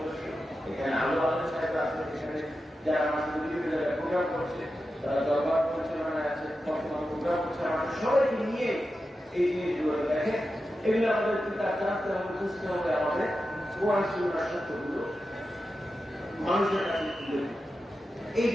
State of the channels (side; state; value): both; normal; correlation 0.91